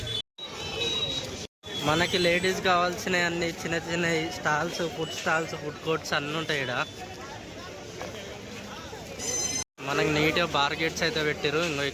మనకి లేడీస్ కావాల్సిన అన్ని చిన్న చిన్న స్టాల్స్, ఫుడ్ కోర్ట్స్ అన్నీ ఉంటాయి ఇక్కడ. మనకి నీట్గా బార్గేట్స్ అయితే పెట్టారు. ఇంకో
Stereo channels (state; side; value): identical; both; correlation 1.00